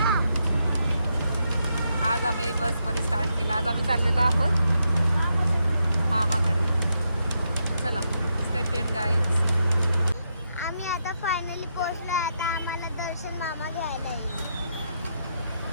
आज आम्ही बसमध्ये स्टार्ट केला. आज आम्ही चाललेलो आहोत मामाकडे. चला स्टे ट्यून्ड गाईज. आम्ही आता फायनली पोहोचलो. आता आम्हाला दर्शन मामा घ्यायला येईल.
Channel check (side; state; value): both; inverted; correlation -0.81